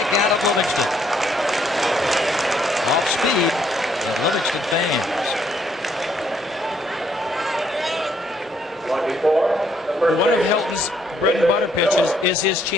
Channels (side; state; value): both; normal; correlation 0.70